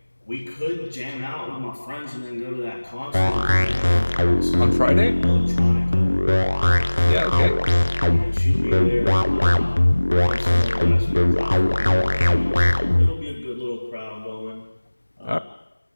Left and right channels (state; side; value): inverted; both; correlation -1.00